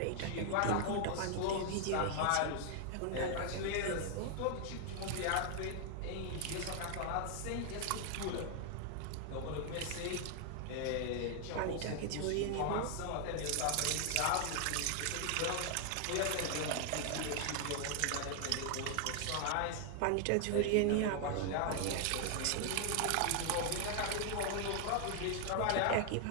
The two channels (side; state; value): both; different; correlation 0.00